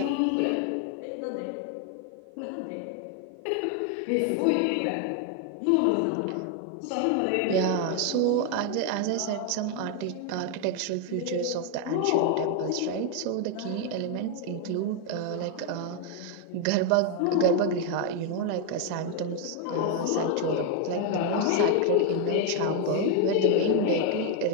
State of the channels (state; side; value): different; both; correlation 0.01